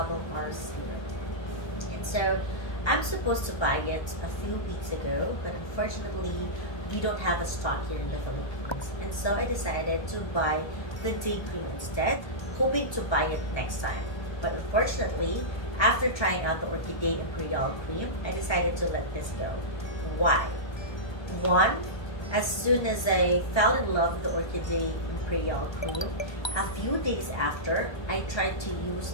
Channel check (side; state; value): right; late; 1.3 ms